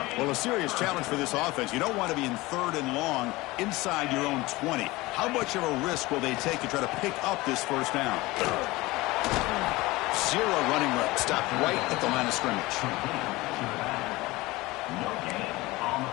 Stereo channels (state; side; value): quieter; right; 20.6 dB